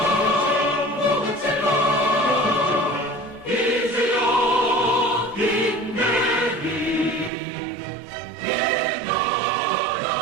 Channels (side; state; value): left; drops out; at 7.3 s